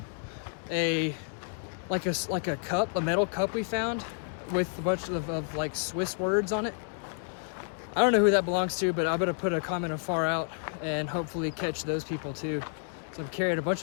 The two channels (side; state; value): right; silent; digital silence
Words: a cup, a metal cup we found with a bunch of like Swiss words on it. I don't know who that belongs to, but I'm gonna put a comment of far out and hopefully catch those people too. So I'm carrying a bunch